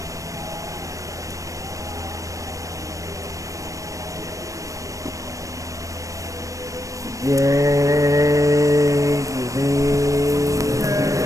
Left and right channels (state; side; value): late; left; 0.16 ms